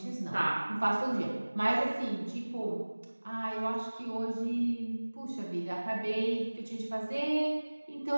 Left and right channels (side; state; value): both; inverted; correlation -1.00